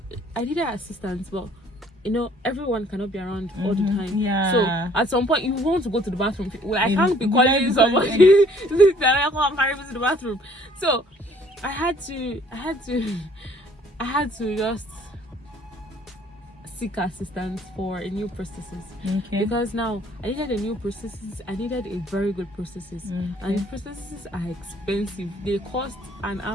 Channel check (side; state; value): both; normal; correlation 0.59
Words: needed assistance, but you know, everyone cannot be around all the time. So at some point you want to go to the bathroom. Well, I can't be calling somebody that I can't carry me to the bathroom. So I had to just seek assistance for a new prosthesis because now I needed a new prosthesis. I needed a very good prosthesis, and the prostheses are expensive. They cost an